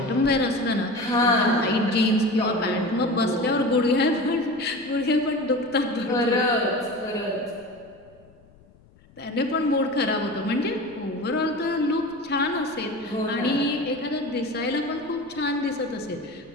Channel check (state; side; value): noise; left; rumble, 28 dB below the sound